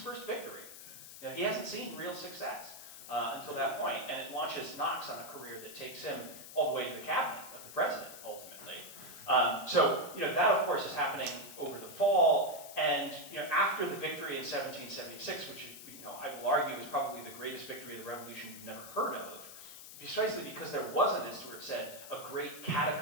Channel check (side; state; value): left; noise; hiss, 14 dB below the sound